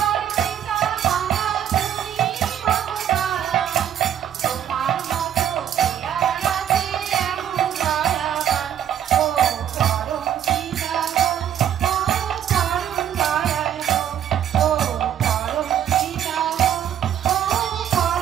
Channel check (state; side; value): quieter; left; 10.0 dB